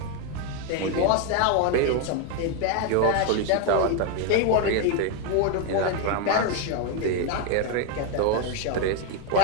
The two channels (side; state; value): both; different; correlation 0.01